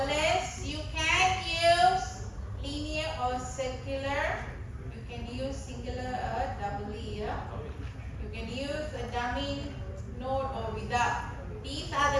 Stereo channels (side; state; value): both; identical; correlation 1.00